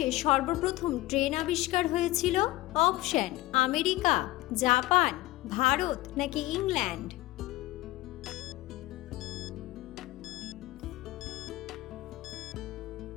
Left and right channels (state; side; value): quieter; right; 18.3 dB